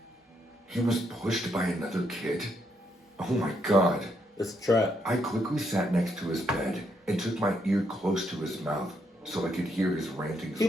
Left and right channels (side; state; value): both; normal; correlation 0.76